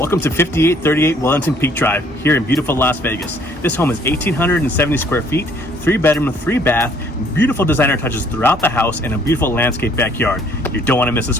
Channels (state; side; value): normal; both; correlation 0.61